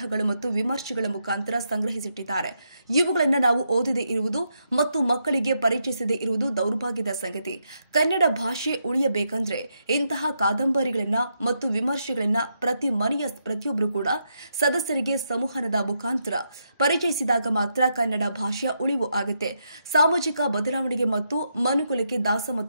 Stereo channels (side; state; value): both; inverted; correlation -0.81